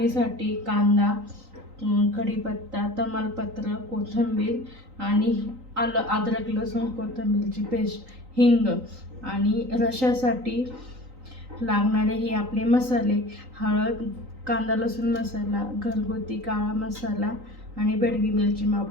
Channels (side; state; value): left; late; 3.9 ms